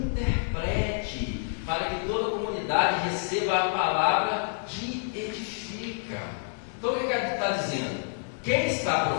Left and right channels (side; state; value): right; silent; digital silence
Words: para que toda a comunidade receba a palavra que edifica. Então o que ele está dizendo? Quem está